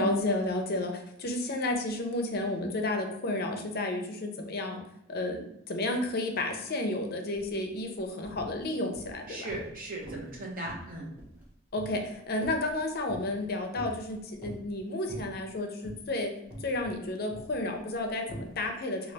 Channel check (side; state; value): both; normal; correlation 0.13